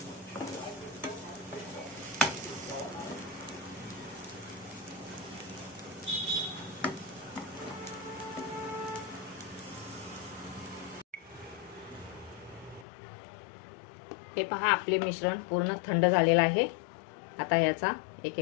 हे पहा, आपले मिश्रण पूर्ण थंड झालेलं आहे. आता याचा एक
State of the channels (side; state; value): right; drops out; at 12.9 s